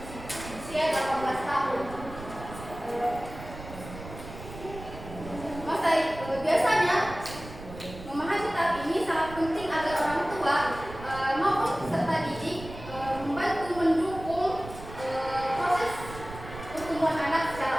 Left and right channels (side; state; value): right; noise; rumble, 13 dB below the sound